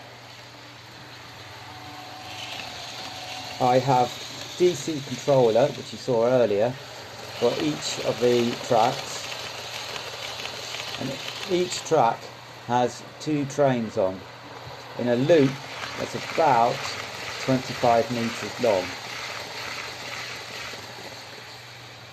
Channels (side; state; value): both; identical; correlation 1.00